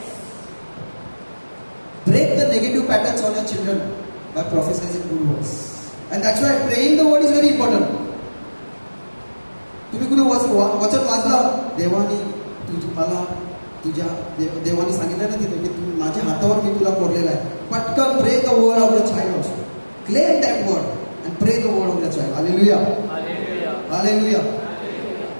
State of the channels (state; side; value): inverted; both; correlation -1.00